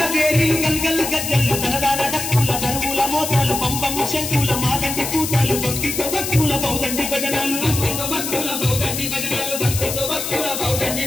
పేరి గల్గల్ గజ్జలు తనదాన డక్కుల దరువుల మోతాలు పంపము శంకుల మాదండి కూతాలు భక్తితో భక్తుల బౌదండి భజనాలు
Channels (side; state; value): left; noise; hiss, 4 dB below the sound